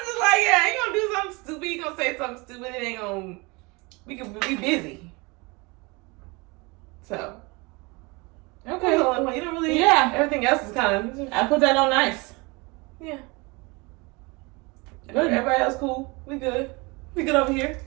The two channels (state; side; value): quieter; left; 26.7 dB